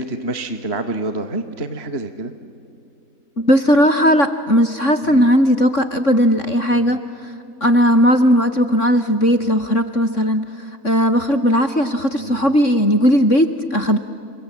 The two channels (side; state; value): right; late; 3.6 ms